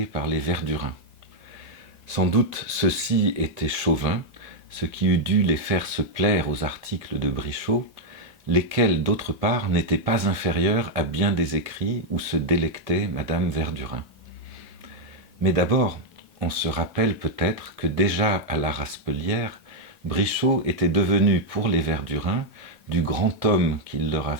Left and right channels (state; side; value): normal; both; correlation 0.00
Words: par les Verdurins. Sans doute ceux-ci étaient chauvins, ce qui eût dû les faire se plaire aux articles de Brichot, lesquels d'autre part n'étaient pas inférieurs à bien des écrits où se délectait Madame Verdurin. Mais d'abord, on se rappelle peut-être que déjà à la Raspelière, Brichot était devenu pour les Verdurins du grand homme qu'il leur